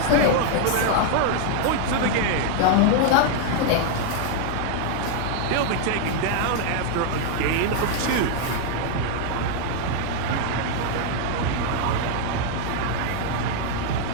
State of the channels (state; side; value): different; both; correlation 0.00